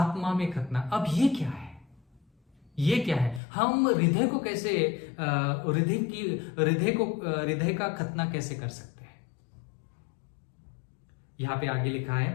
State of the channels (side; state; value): right; drops out; at 3.4 s